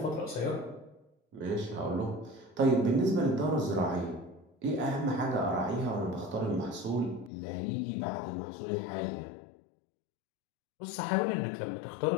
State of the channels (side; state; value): right; drops out; at 7.3 s